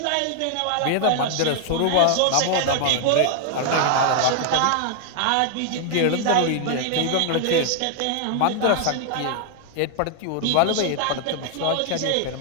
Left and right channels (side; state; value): both; different; correlation 0.00